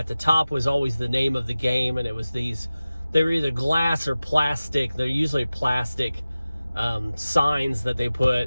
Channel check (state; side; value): inverted; both; correlation -0.96